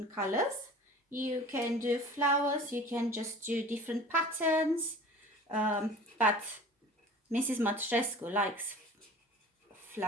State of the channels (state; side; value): normal; both; correlation 0.42